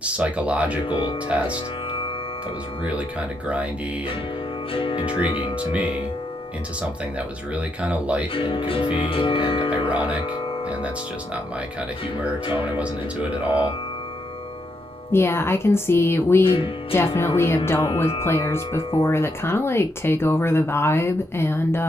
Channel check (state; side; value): normal; both; correlation 0.79